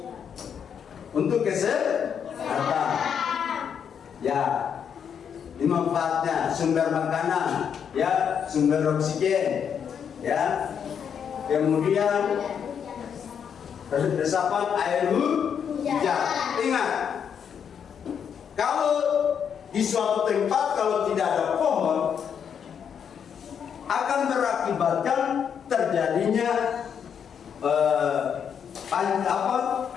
Untuk kesehatan. Ya, ini manfaatnya sumber makanan, ya, sumber oksigen, ya. Kemudian resapan air hujan. Ingat, kalau di suatu tempat kalau tidak ada pohon akan berakibatkan terjadinya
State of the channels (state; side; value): quieter; right; 7.7 dB